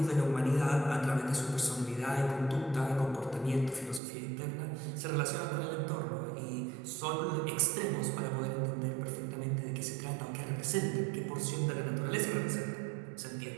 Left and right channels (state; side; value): drops out; left; at 4.0 s